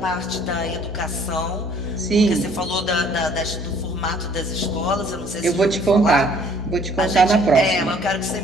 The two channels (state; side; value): normal; both; correlation 0.58